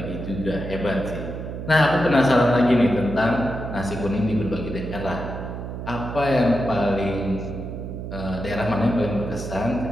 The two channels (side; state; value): right; noise; hum, 7 dB below the sound